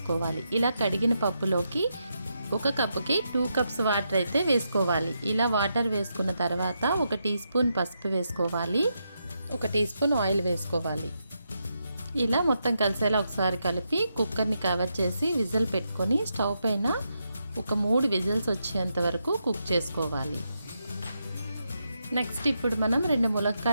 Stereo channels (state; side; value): inverted; both; correlation -0.83